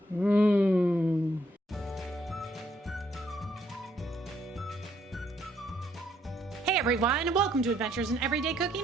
Mmm. Hey everyone, welcome to Adventures in Everyday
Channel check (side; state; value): both; normal; correlation 0.71